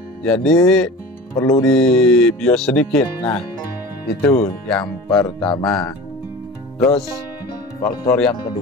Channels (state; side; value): normal; both; correlation 0.36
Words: jadi perlu dibius sedikit. Nah itu yang pertama. Terus faktor yang